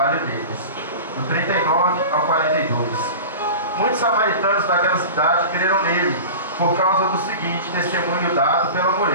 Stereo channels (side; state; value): both; inverted; correlation -0.33